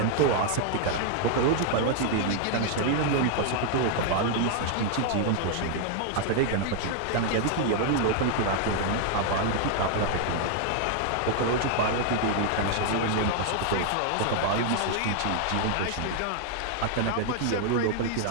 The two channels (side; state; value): both; different; correlation 0.00